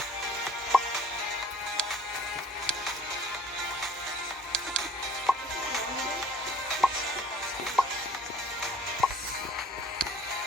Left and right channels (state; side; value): normal; both; correlation 0.53